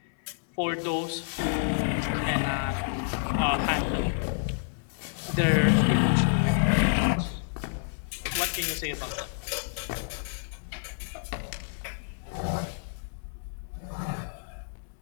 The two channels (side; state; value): right; silent; digital silence